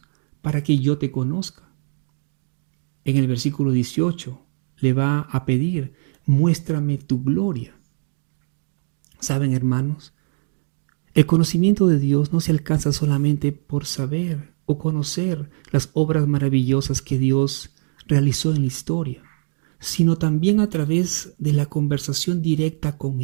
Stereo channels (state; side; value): silent; left; digital silence